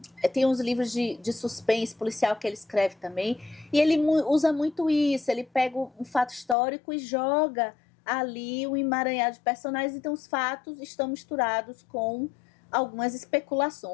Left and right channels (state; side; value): drops out; right; at 6.6 s